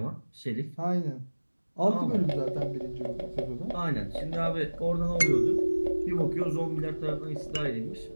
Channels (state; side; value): inverted; both; correlation -1.00